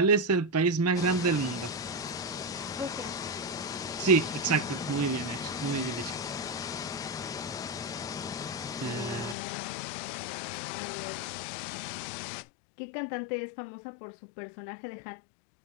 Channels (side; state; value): right; drops out; at 9.3 s